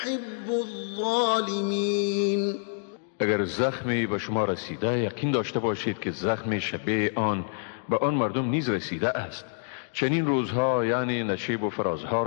الظالمين. اگر زخمی به شما رسیده یقین داشته باشید که زخم شبیه آن به آن مردم نیز رسیده است. چنین روزها یعنی نشیب و فرازها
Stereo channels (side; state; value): right; silent; digital silence